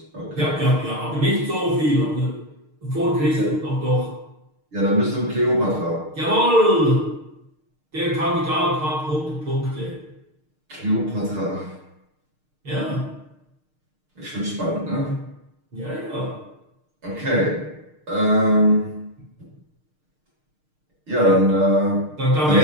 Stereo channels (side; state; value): left; late; 6.5 ms